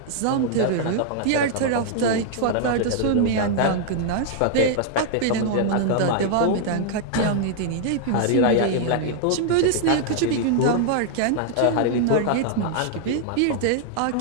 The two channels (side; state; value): both; different; correlation 0.00